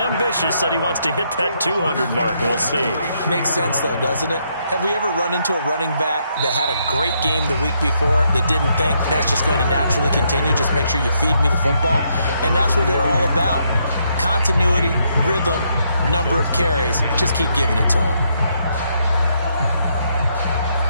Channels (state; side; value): inverted; both; correlation -0.75